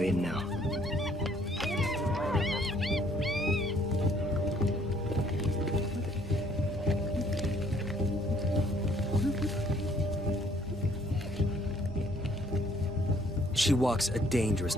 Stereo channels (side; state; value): both; normal; correlation 0.62